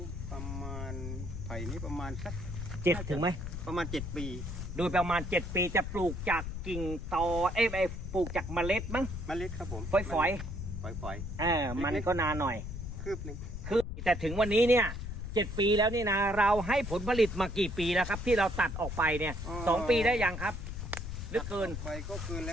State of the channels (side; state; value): left; noise; rumble, 6 dB below the sound